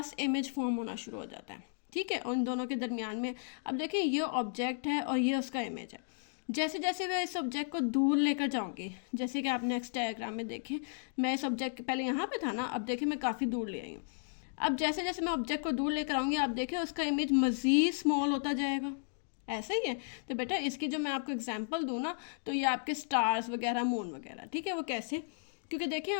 इमेज फॉर्म होना शुरू हो जाता है। ठीक है, उन दोनों के दरमियान में। अब देखिए ये ऑब्जेक्ट है और ये उसका इमेज है। जैसे जैसे मैं इस ऑब्जेक्ट को दूर लेकर जाऊंगी, जैसे कि आप नेक्स्ट डायग्राम में देखें, मैं इस ऑब्जेक्ट पहले यहाँ पे था ना, अब देखिए मैं काफ़ी दूर ले आई हूँ। अब जैसे जैसे मैं ऑब्जेक्ट को दूर लेकर आऊँगी, आप देखिए उसका इमेज मज़ीद स्मॉल होता जाएगा। ऐसा ही है। तो बेटा इसकी जो मैं आपको एग्जांपल दूँ ना, तो ये आपके स्टार्स वगैरह, मून वगैरह। ठीक है, वो कैसे, क्योंकि देखिए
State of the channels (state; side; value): silent; right; digital silence